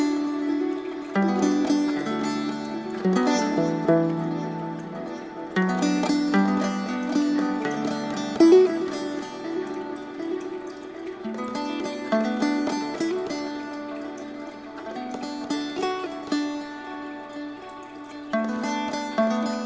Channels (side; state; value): both; identical; correlation 1.00